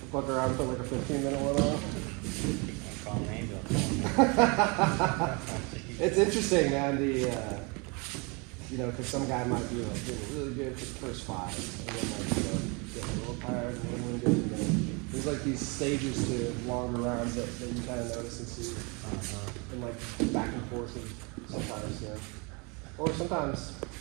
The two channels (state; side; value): quieter; left; 30.5 dB